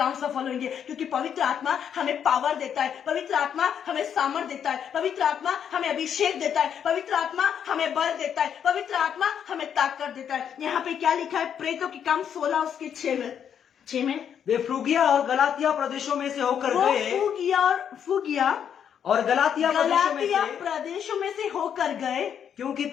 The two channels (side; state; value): right; quieter; 8.5 dB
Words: सफल होंगे, क्योंकि पवित्र आत्मा हमें पावर देता है, पवित्र आत्मा हमें सामर्थ देता है, पवित्र आत्मा हमें अभिषेक देता है, पवित्र आत्मा हमें बल देता है, पवित्र आत्मा हमें ताकत देता है। यहाँ पे क्या लिखा है? प्रेतों के काम 16 उसके 6 में वे फ्रूगिया और गलातिया प्रदेशों में से होकर गए, फूगिया और गलातिया प्रदेशों में से होकर गए, क्योंकि